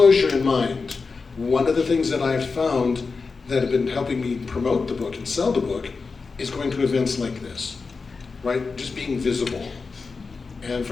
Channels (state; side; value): quieter; right; 4.5 dB